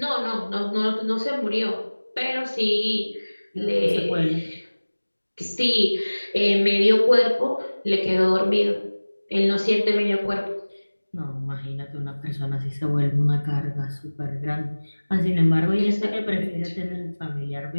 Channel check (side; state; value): both; inverted; correlation -1.00